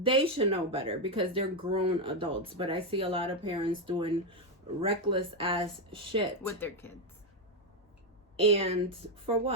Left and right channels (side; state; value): both; normal; correlation 0.05